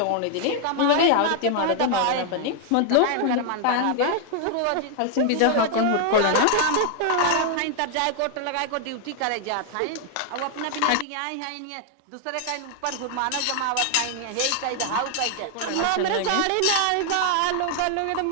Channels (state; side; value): different; both; correlation 0.00